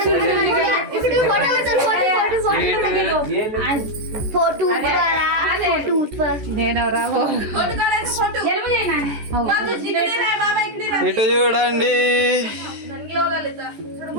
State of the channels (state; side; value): late; left; 14 ms